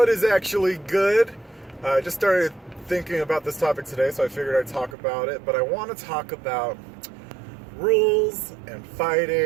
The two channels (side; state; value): left; drops out; at 5.0 s